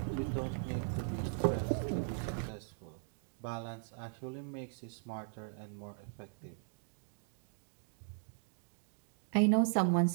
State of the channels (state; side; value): silent; left; digital silence